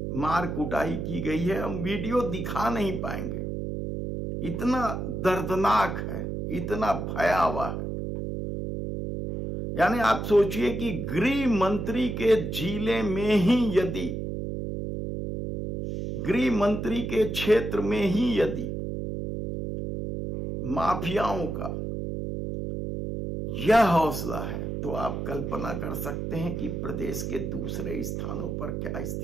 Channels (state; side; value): noise; right; hum, 4 dB below the sound